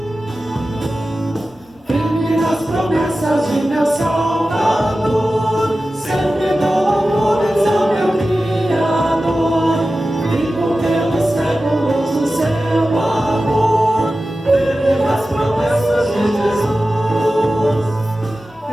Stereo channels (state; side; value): normal; both; correlation 0.94